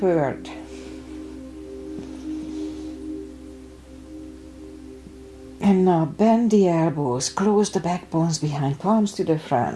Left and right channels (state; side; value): identical; both; correlation 1.00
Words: And now bend the elbows, close the backbones behind, palms to the